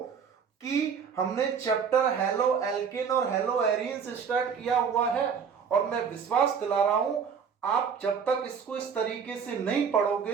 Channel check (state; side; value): quieter; left; 6.6 dB